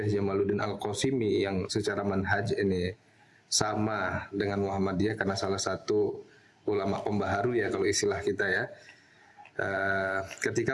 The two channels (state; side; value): identical; both; correlation 1.00